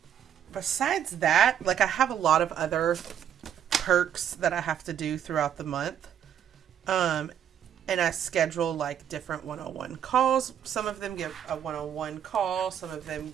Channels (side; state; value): left; quieter; 9.5 dB